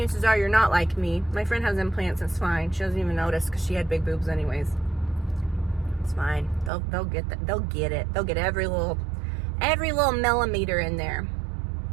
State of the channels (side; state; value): left; drops out; at 6.7 s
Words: are you're not like me. My friend has implants, it's fine. She doesn't even notice because she had big boobs anyways. It's fine. They'll get that. They'll get it. They'll get every little millimeter in there.